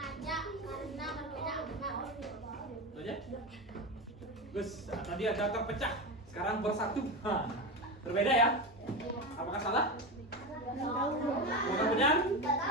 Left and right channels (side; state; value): both; normal; correlation 0.20